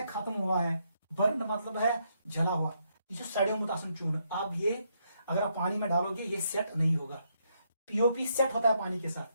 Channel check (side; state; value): both; inverted; correlation -0.77